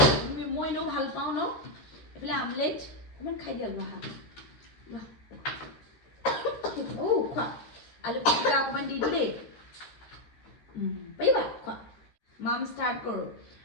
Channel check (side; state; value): right; late; 13 ms